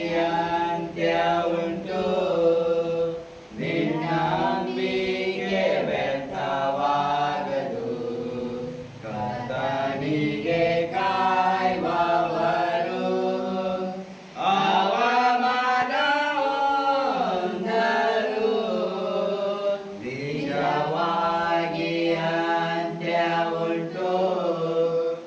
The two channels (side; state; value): both; identical; correlation 1.00